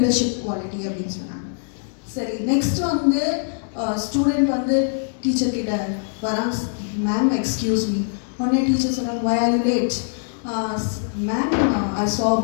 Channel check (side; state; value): right; silent; 64 dB below the other